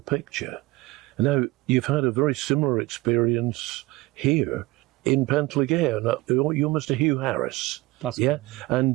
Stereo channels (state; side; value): quieter; left; 20.4 dB